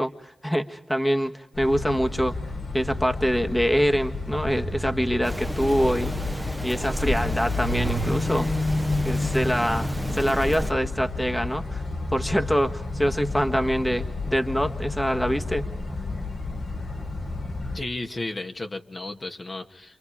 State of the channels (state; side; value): normal; both; correlation 0.95